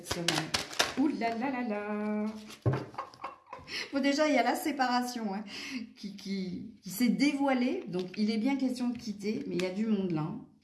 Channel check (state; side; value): identical; both; correlation 1.00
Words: semaine? Ouh là là là là. Bon, déjà, il y a la séparation hein, qui s'est dévoilée. Donc, il est bien question de quitter, mais il y a du monde là.